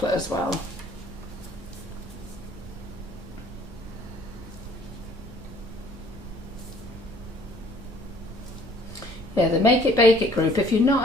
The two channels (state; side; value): normal; both; correlation 0.56